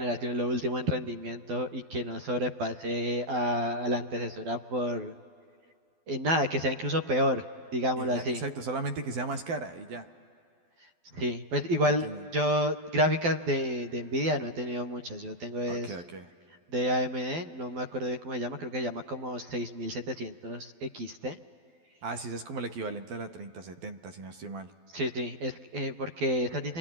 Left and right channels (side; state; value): left; late; 12 ms